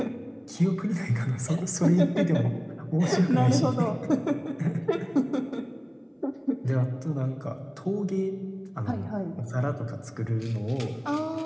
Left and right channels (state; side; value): identical; both; correlation 1.00